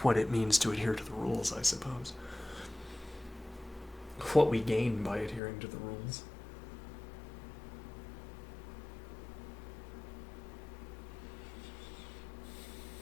what it means to adhere to the rules, I suppose. What we gain by adhering to the rules.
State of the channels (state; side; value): drops out; right; at 5.4 s